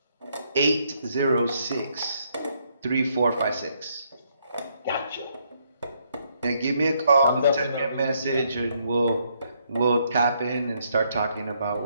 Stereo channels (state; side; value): inverted; both; correlation -0.73